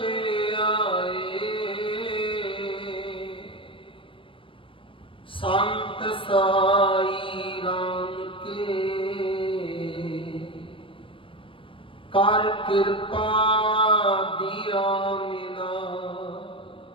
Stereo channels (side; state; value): right; late; 0.25 ms